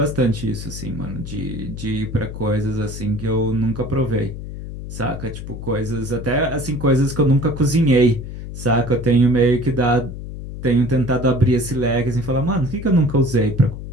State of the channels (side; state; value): left; noise; hum, 9 dB below the sound